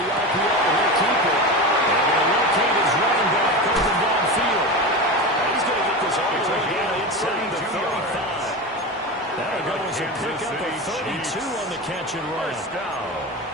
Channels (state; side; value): normal; both; correlation 0.24